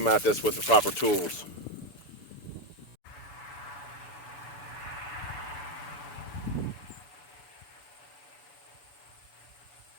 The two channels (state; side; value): late; right; 6.8 ms